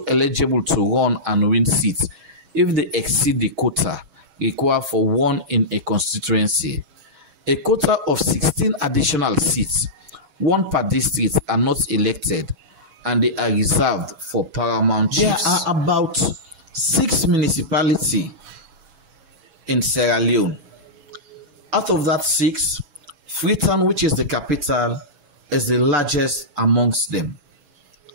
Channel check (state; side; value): late; left; 6.2 ms